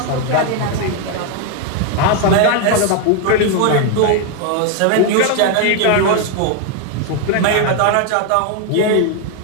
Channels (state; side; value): different; both; correlation 0.01